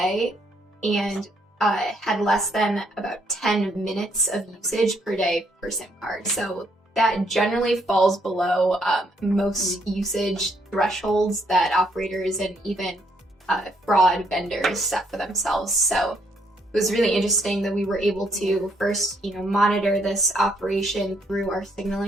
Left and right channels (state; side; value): normal; both; correlation 0.71